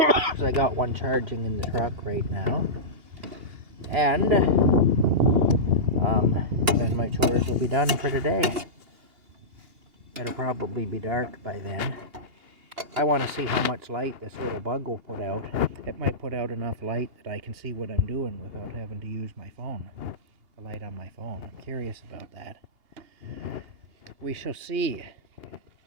so I got one charging in the truck right now. And then my chores will be done for the day. It'll probably be dark by then. I want to see how much light this little bug will put out. It might put out enough light that I can see what I'm doing without having to use my phone. The light on my phone. I'm curious about that. We shall see.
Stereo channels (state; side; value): late; left; 2.8 ms